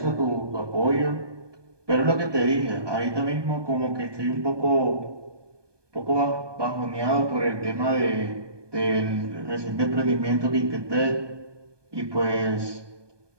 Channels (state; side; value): late; left; 1.2 ms